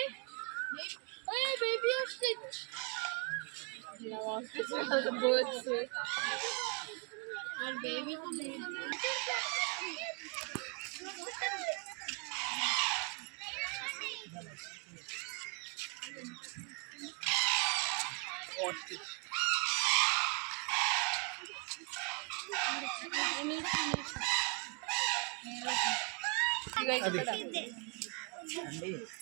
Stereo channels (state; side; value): quieter; left; 35.0 dB